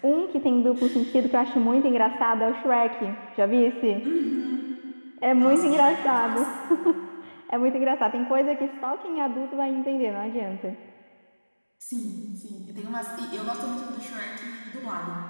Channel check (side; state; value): both; inverted; correlation -1.00